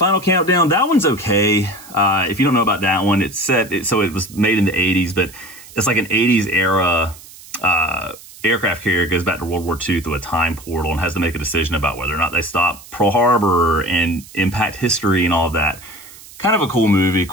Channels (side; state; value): right; noise; hiss, 19 dB below the sound